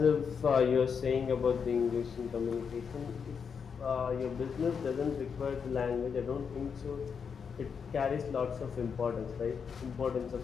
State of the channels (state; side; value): quieter; right; 6.4 dB